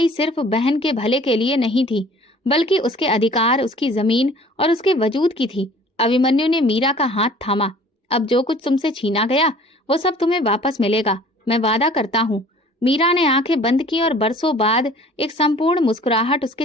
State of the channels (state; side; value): normal; both; correlation 0.50